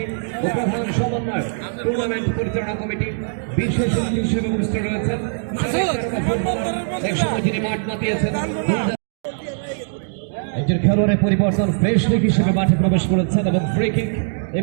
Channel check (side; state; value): left; silent; digital silence